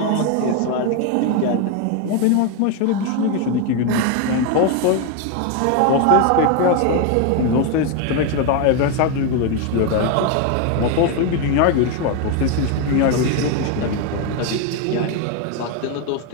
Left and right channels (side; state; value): both; different; correlation 0.02